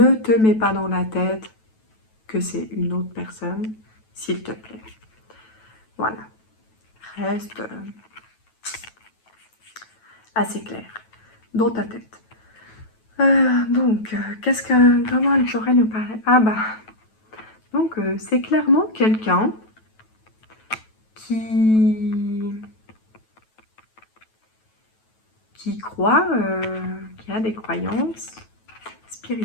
te mets pas dans la tête que c'est une autre personne, s'il te plaît. Voilà. Reste assez clair dans ta tête. Donc, comment elle pourrait nous parler? Ah bah, donc c'est clairement quelqu'un qui croit, qui a des croyances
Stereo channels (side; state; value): right; late; 9.2 ms